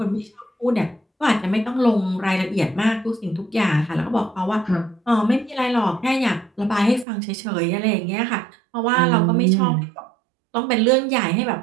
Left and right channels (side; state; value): left; drops out; at 7.1 s